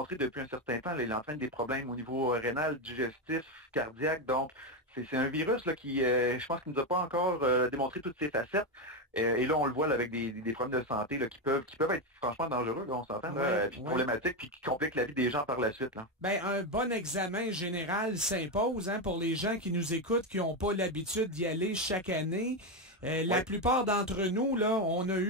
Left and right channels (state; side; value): normal; both; correlation 0.10